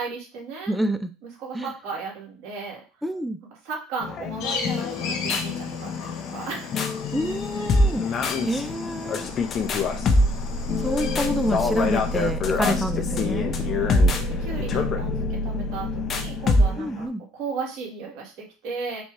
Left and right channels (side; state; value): both; normal; correlation 0.65